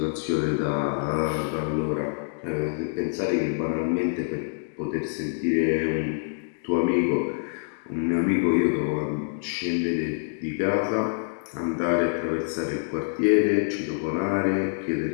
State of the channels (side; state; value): right; silent; digital silence